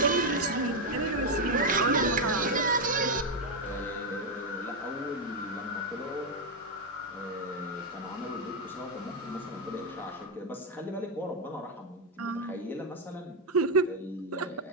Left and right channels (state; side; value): normal; both; correlation 0.03